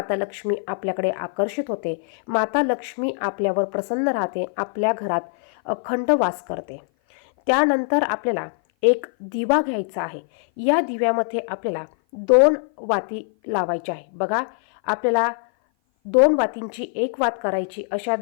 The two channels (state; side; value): silent; right; 56 dB below the other